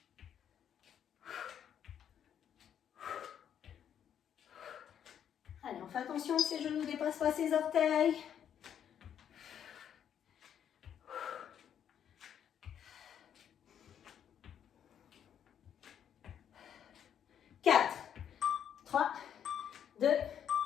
Allez, on fait attention que ses genoux ne dépassent pas ses orteils. Quatre, 3, 2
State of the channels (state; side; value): quieter; right; 9.1 dB